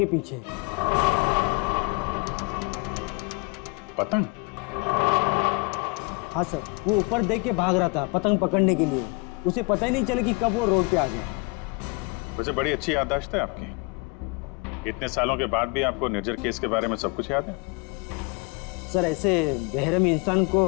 पीछे। पतंग? हाँ सर, वो ऊपर देख के भाग रहा था पतंग पकड़ने के लिए। उसे पता ही नहीं चला कि कब वो रोड पे आ गया। वैसे बड़ी अच्छी याददाश्त है आपकी। इतने सालों के बाद भी आपको निर्जर केस के बारे में सब कुछ याद है? सर ऐसे बेरहम इंसान को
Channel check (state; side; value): quieter; right; 29.6 dB